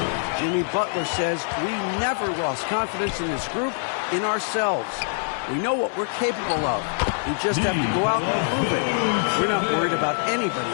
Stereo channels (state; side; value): silent; right; digital silence